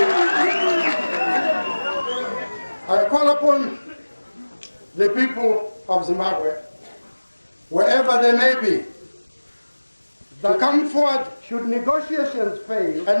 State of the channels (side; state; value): both; inverted; correlation -1.00